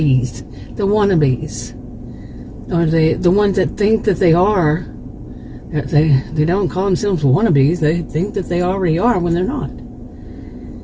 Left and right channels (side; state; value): both; identical; correlation 1.00